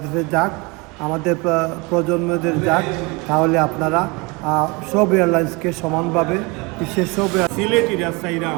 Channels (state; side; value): quieter; left; 27.2 dB